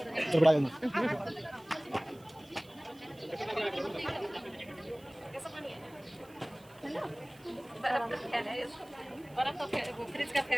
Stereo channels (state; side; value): noise; right; hiss, 26 dB below the sound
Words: तो बड़ा बर्फ का फैल है, बर्फ का फैल, वो फ्रिज का